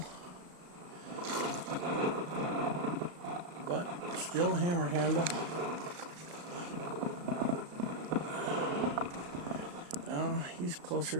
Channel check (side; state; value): left; late; 35 ms